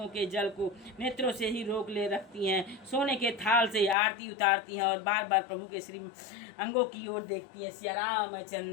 के जल को नेत्रों से ही रोक ले रखती हैं। सोने के थाल से आरती उतारती हैं और बार बार प्रभु के श्री अंगों की ओर देखती हैं। सिया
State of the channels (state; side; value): drops out; right; at 4.0 s